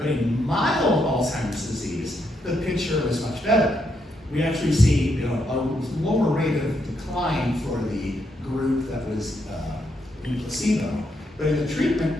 in mild Alzheimer's disease, the picture is much better. We actually see a lower rate of decline for the group that was in placebo. But in the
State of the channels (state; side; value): normal; both; correlation 0.78